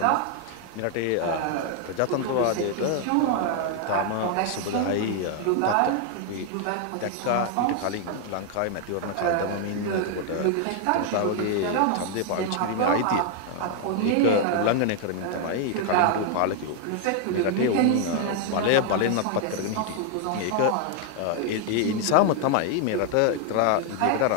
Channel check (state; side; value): different; both; correlation 0.00